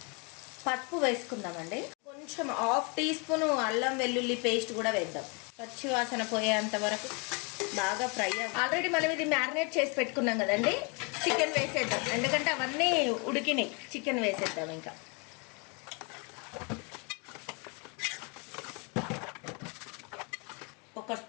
పసుపు వేసుకుందామండి. కొంచెం 1/2 టీ స్పూన్ అల్లం వెల్లుల్లి పేస్ట్ కూడా వేద్దాం. పచ్చి వాసన పోయేంత వరకు బాగా ఫ్రై అవ్వాలి. ఆల్రెడీ మనం ఇది మ్యారినేట్ చేసి పెట్టుకున్నాం కదండి. చికెన్ వేసేద్దాం, ఎందుకంటే అవన్నీ ఉడికినాయి. చికెన్ వేసేద్దాం. ఇంకా ఒక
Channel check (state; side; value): quieter; right; 32.9 dB